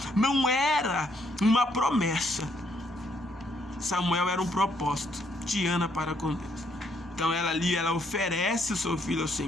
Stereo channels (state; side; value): normal; both; correlation 0.71